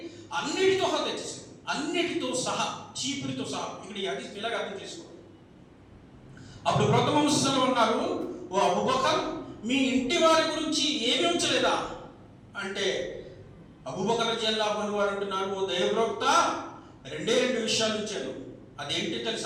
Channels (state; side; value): identical; both; correlation 1.00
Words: అన్నిటితో సహా తెచ్చేసాను, అన్నిటితో సహా, చీపురితో సహా. ఇక్కడ ఈ హదీస్ ఇలాగ అర్థం చేసుకోవాలి. అప్పుడు ప్రవక్త ముహమ్మద్ సల్లల్లాహు అన్నారు, ఓ అబూ బకర్, మీ ఇంటి వారి గురించి ఏమి ఉంచలేదా అంటే అబూ బకర్ రజియల్లాహు అన్హు వారు అంటున్నారు, ఓ దైవ ప్రవక్త, రెండే విషయాలు ఉంచాను. అదేంటి